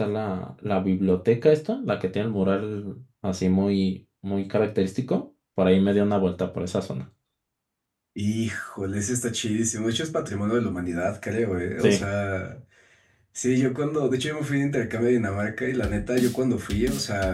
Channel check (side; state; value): both; identical; correlation 1.00